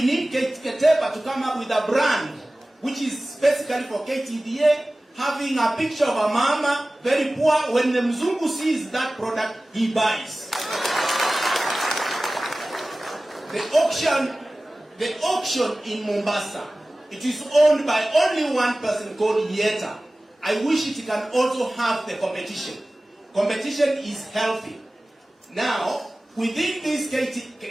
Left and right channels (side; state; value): both; normal; correlation 0.97